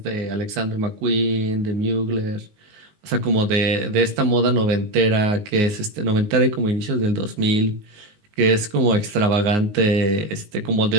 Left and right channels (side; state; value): left; late; 19 ms